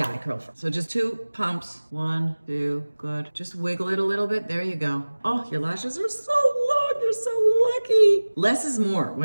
I curl first. So just 2 pumps. 1, 2, good. Just wiggle it a little bit. There you go. Oh, your lashes are so long. You're so lucky. Less is more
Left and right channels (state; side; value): inverted; both; correlation -1.00